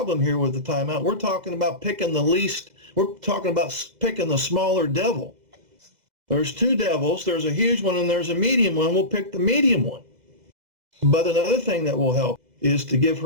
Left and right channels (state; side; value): late; left; 2.0 ms